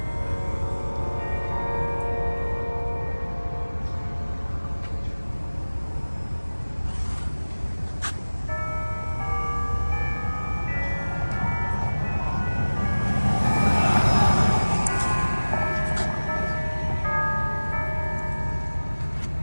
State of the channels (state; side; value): inverted; both; correlation -1.00